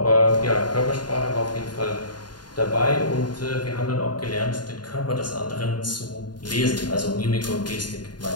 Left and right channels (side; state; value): right; late; 0.70 ms